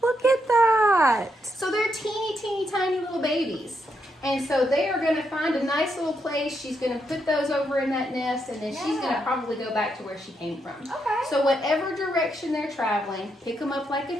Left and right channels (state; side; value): normal; both; correlation 0.80